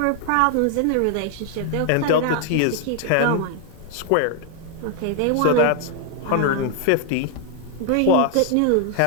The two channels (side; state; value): both; different; correlation 0.00